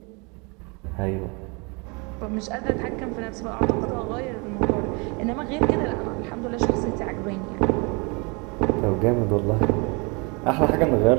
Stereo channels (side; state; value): left; quieter; 30.4 dB